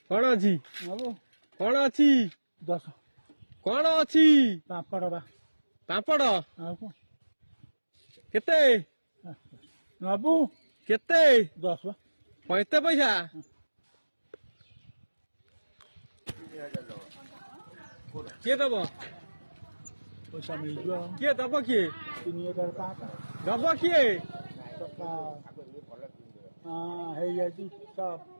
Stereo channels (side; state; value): both; inverted; correlation -1.00